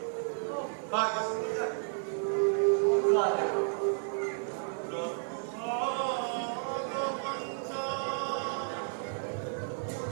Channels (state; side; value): silent; left; 56 dB below the other